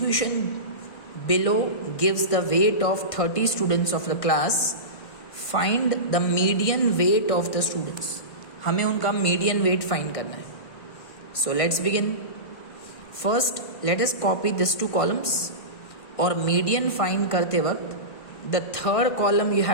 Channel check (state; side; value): late; right; 1.5 ms